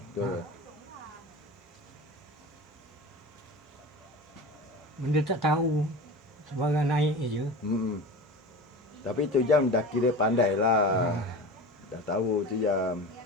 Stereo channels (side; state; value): both; normal; correlation 0.32